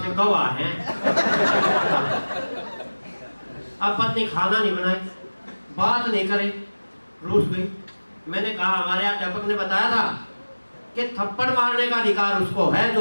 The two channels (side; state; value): both; inverted; correlation -1.00